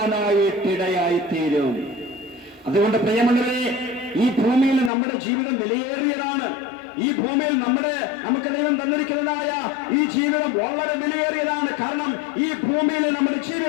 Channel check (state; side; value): drops out; right; at 4.9 s